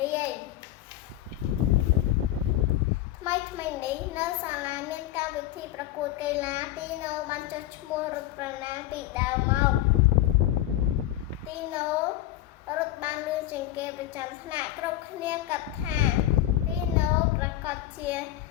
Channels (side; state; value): right; quieter; 14.1 dB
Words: រាយថ្មីនេះនៅសាលាមានកម្មវិធីប្រកួតកីឡាទីណូបានចុះឈ្មោះរត់ប្រណាំងពីដើមមកទីណូរត់បានលឿនជាងគេប្រចាំថ្នាក់គ្រប់គ្នាគិតថាទីណូប្រកាសជា